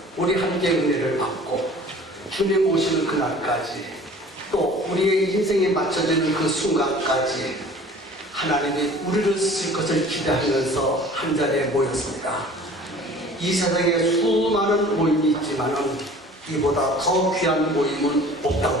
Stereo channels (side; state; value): both; normal; correlation 0.47